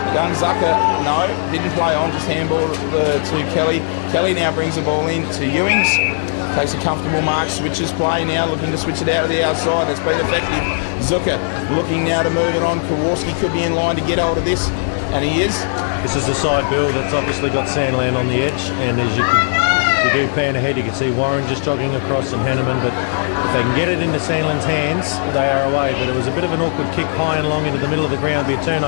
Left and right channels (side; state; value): right; silent; digital silence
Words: Young Zucker, no, didn't play on, just handball to Kelly. Kelly now brings the ball in to Ewings. Takes a comfortable mark, switches play now, looking to switch it out of the outside. It's been effective. Zucker looking now to move it on. Kowalski could be in line to get hold of this, and he is. This is the side, Bill, that's obviously got Sandland on the edge, and as you do pan ahead, you can see Warren just jogging across and Hanneman, but if they can get it into Sandland's hands, they are away. But it was a bit of an awkward kick high and long into the middle of the ground, be a